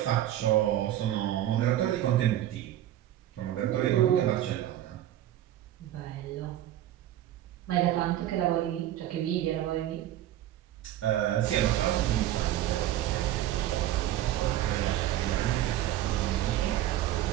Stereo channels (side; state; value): left; quieter; 12.9 dB